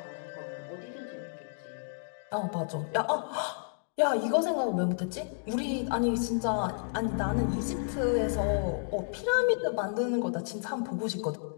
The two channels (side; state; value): right; silent; digital silence